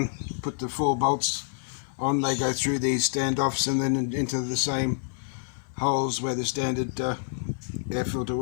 put the 4 bolts on. They go through these standoffs and then into the same holes where the standard air filter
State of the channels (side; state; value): right; silent; 60 dB below the other